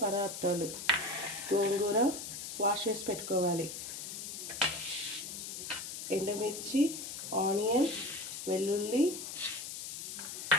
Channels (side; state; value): left; noise; hiss, 7 dB below the sound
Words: పదార్థాలు: గోంగూర వాష్ చేసి పెట్టుకోవాలి, ఎండుమిర్చి, ఆనియన్, వెల్లుల్లి,